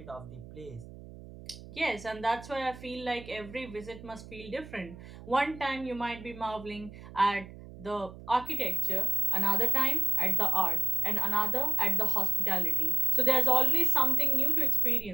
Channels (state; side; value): noise; right; hum, 16 dB below the sound